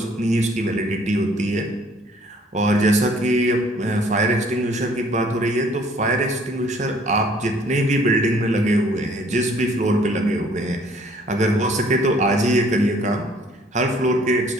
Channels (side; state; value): both; normal; correlation 0.58